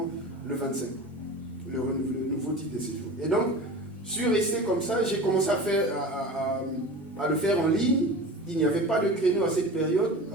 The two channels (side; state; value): both; normal; correlation 0.34